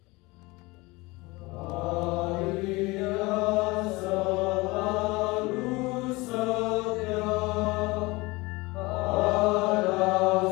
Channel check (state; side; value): quieter; right; 23.3 dB